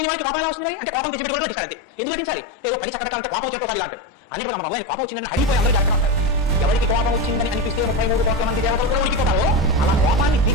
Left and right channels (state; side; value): normal; both; correlation 0.16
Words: వాడికి కోపం ఎలా వస్తుంది? అంటే కోపం తెచ్చిపెట్టుకోవడం పెట్టాలి. ఎందుకు పెట్టించాలి? ఏదో పని చక్కటంటే కోపం వచ్చేటో అంటారు. అన్ని మన మొదలైన కోపం వచ్చిందని హడిపోయి అందరూ జాగ్రత్త ఉంటారు. ఎవరికి కోపం వచ్చిందని అనిపిస్తే 33 కోట్ల మంది దేవతలు కూడా ఉడికిపోతారో అలా కోపాన్ని